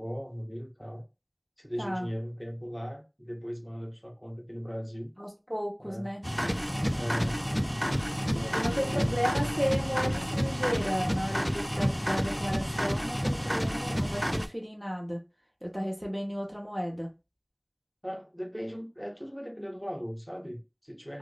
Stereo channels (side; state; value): both; identical; correlation 1.00